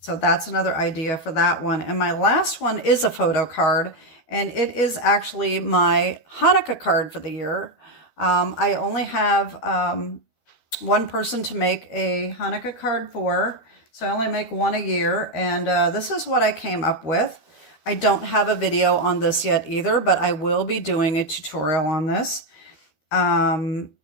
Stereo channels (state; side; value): late; right; 12 ms